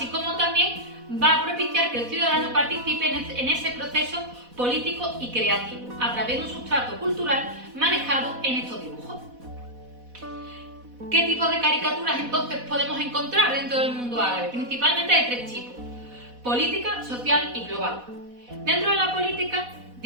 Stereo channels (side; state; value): left; late; 4.1 ms